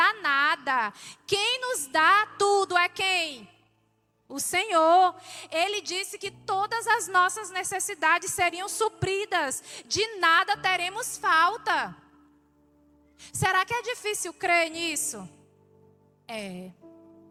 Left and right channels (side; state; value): both; identical; correlation 1.00